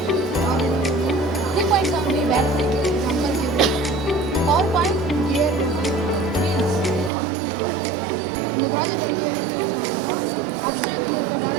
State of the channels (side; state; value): left; drops out; at 7.1 s